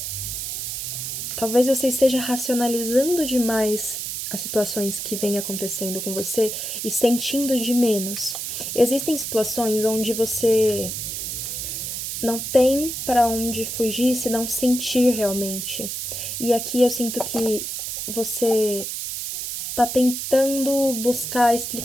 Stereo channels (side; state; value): right; noise; hiss, 5 dB below the sound